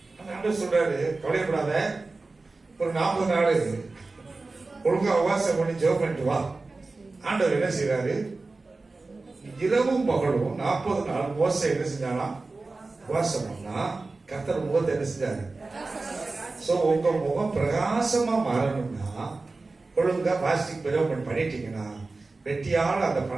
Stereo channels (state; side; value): quieter; left; 3.6 dB